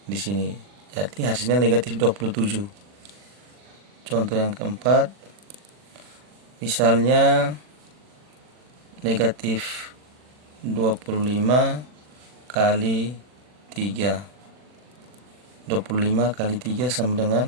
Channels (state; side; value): late; left; 40 ms